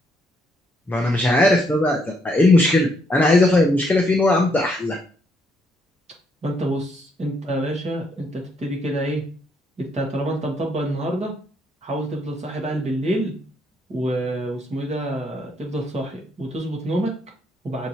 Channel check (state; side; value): normal; both; correlation 0.73